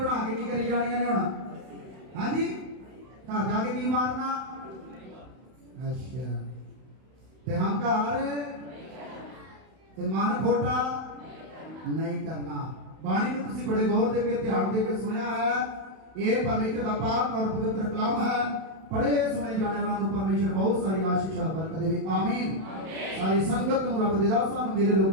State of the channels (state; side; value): late; left; 31 ms